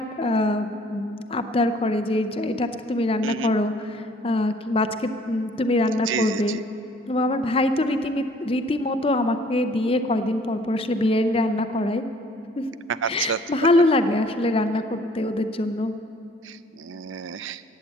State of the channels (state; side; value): normal; both; correlation 0.57